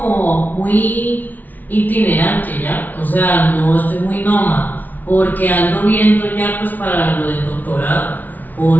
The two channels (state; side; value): late; right; 0.081 ms